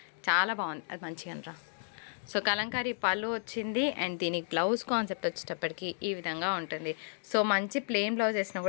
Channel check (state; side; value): silent; right; digital silence